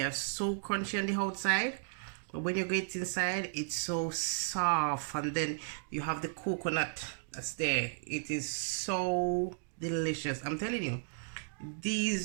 are so crunchy on the outside, but when you get inside, it's so soft, and then you have the coconut that's there. It is so delicious. I'm telling you,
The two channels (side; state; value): left; silent; digital silence